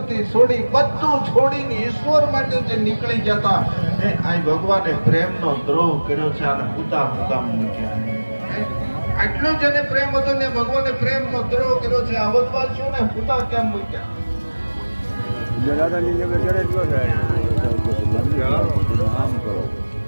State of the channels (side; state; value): both; inverted; correlation -1.00